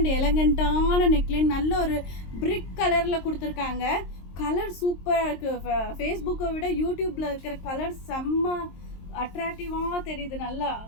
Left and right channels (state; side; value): late; right; 23 ms